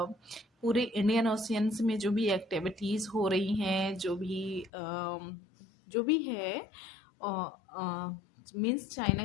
इंडियन ओशियंस में जो भी एक्टिविटीज़ हो रही हैं, जो भी है मीन्स चाइना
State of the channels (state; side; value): drops out; right; at 4.7 s